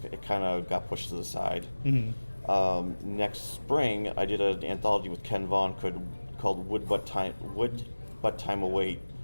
kind of got pushed to the side. Mhm. Next spring, I did an anthology with Ken Vaughn called Wood But Time Await.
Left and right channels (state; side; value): inverted; both; correlation -1.00